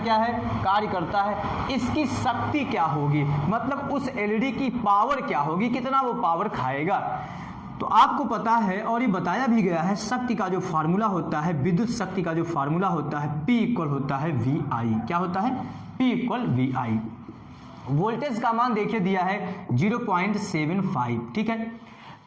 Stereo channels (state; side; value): identical; both; correlation 1.00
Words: है? कार्य करता है। इसकी शक्ति क्या होगी, मतलब उस एलईडी की पावर क्या होगी, कितना वो पावर खाएगा। तो आपको पता है और ये बताया भी गया है, शक्ति का जो फार्मूला होता है, विद्युत शक्ति का जो फार्मूला होता है, P = होता है VI। क्या होता है? P = VI। वोल्टेज का मान देखिए दिया है 0.75, ठीक है।